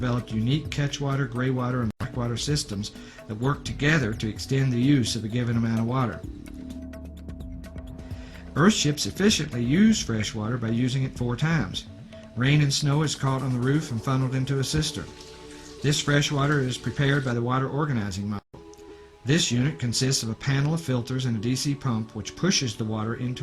unique catchwater, graywater, and blackwater systems that work together to extend the use of a given amount of water. Earthships efficiently use fresh water by using it 4 times. Rain and snow is caught on the roof and funneled into a cistern. This fresh water is prepared by the water organizing model. This unit consists of a panel of filters and a DC pump which pushes the water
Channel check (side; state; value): both; identical; correlation 1.00